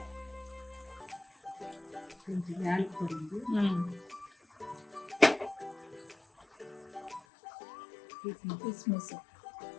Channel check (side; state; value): right; drops out; at 7.2 s